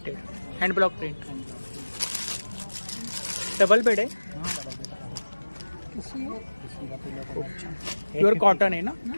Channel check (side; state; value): both; inverted; correlation -1.00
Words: hand block print. Double bed है। प्योर कॉटन है ना?